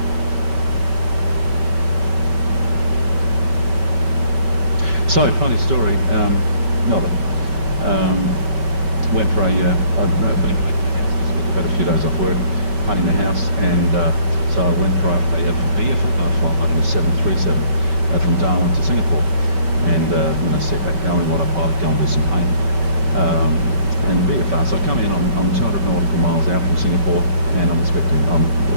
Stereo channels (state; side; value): late; left; 5.2 ms